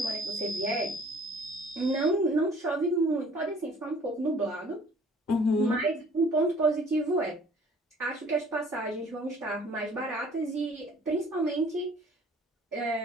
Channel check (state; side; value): normal; both; correlation 0.54